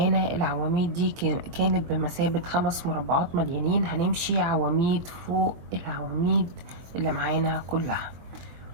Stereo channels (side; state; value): left; late; 23 ms